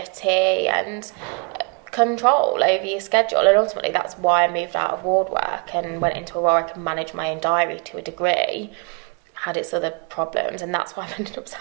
and control over your schedule, and ultimately that's why I moved out of ward work and went into a role where I can manage my own diary to a degree. Had its other problems, and that's why I ended up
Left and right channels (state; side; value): quieter; left; 33.3 dB